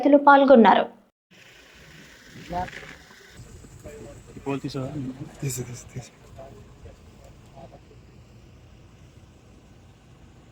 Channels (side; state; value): both; identical; correlation 1.00